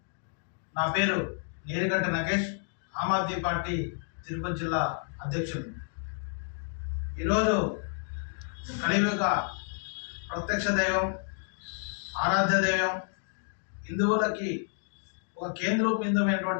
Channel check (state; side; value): silent; right; 57 dB below the other